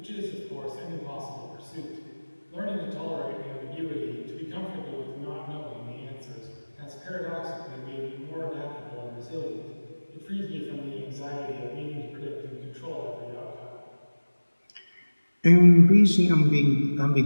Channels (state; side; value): inverted; both; correlation -1.00